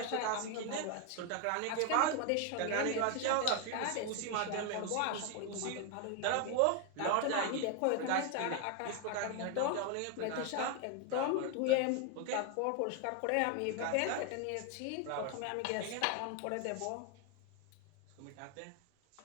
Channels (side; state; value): both; different; correlation 0.01